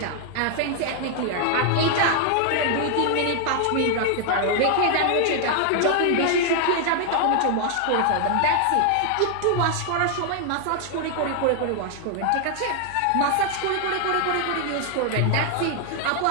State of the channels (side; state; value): both; different; correlation 0.00